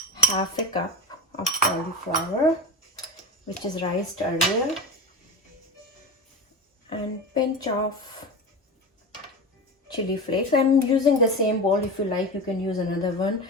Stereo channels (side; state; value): both; normal; correlation 0.26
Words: half a cup of cauliflower, which is riced earlier, and pinch of chili flakes. I'm using the same bowl. If you like, you can use another one.